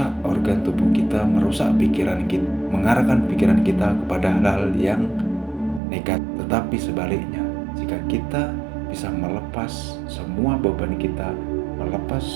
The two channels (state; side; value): drops out; left; at 5.8 s